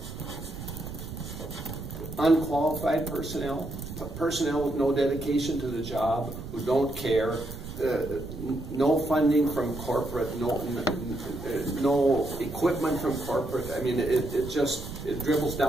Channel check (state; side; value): noise; right; rumble, 10 dB below the sound